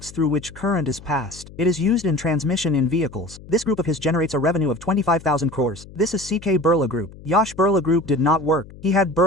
through which current is passed. It is used in transmission in vehicles. This group of his generates a revenue of 25,000 crores. This is CK Birla Group. Yash Birla Group did not work. He had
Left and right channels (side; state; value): left; noise; hum, 18 dB below the sound